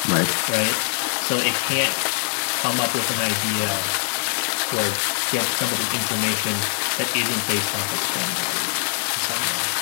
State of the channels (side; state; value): right; silent; digital silence